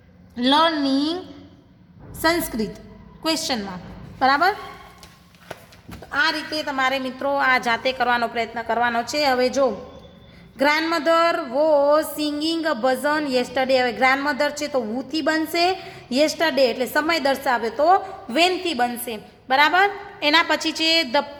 learning Sanskrit question mark, બરાબર. આ રીતે તમારે મિત્રો આ જાતે કરવાનો પ્રયત્ન કરવાનો છે. હવે જો grandmother was singing a Bhajan yesterday. હવે ગ્રાન્ડમધર છે તો વુથી બનશે. યેસ્ટરડે એટલે સમય દર્શાવે તો વેનથી બનશે, બરાબર. એના પછી છે the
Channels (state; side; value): identical; both; correlation 1.00